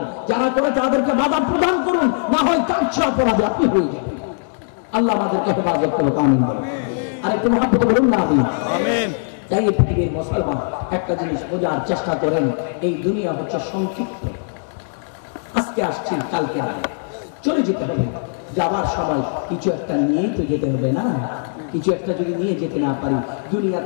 যারা করে তাদেরকে বাধা প্রদান করুন, না হয় তার চেয়ে অপরাধী আপনি হয়ে যাবেন। আল্লাহ আমাদেরকে হেফাজত করুক, আমিন বলুন। আর একটু মহাব্বত বলুন না, আমিন। তাই পৃথিবীর মুসলমান একটা জিনিস বোঝার চেষ্টা করেন, এই দুনিয়া হচ্ছে সংক্ষিপ্ত। আজকে আসছি, কালকে চলে যেতে হবে। যাবার সময় কিছু একটা নিয়েই তো যেতে হবে না? কিছু একটা যদি নিয়ে যেতে না পারি,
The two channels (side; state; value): right; silent; digital silence